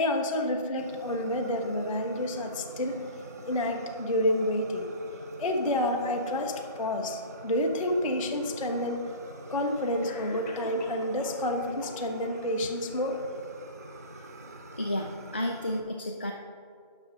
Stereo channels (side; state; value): both; inverted; correlation -0.34